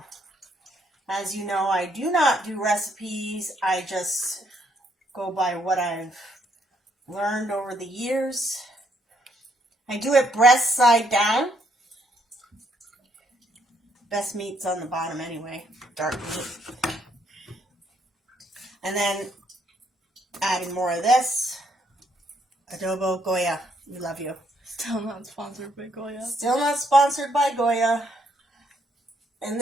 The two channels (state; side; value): normal; both; correlation 0.71